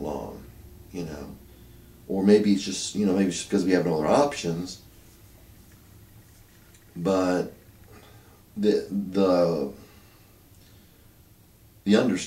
long, or maybe it's just, maybe it's because we have no other options. But the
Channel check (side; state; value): both; identical; correlation 1.00